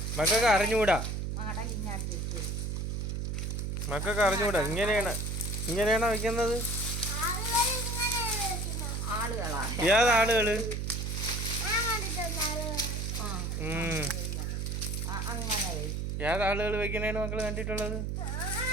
മക്കൾക്ക് അറിഞ്ഞൂടാ. മടൽ ഇങ്ങാട്ട് തിരിച്ചു വെച്ചു. മക്കൾക്ക് അറിഞ്ഞൂടാ. ഇങ്ങനെയാണോ വെക്കുന്നത്? ആളുകളാ. ഏതാളുകള്? അങ്ങനെ ഏതാളുകൾ വെക്കണേണ് മക്കള് കണ്ടിട്ടുള്ളത്?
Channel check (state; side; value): noise; right; hum, 2 dB below the sound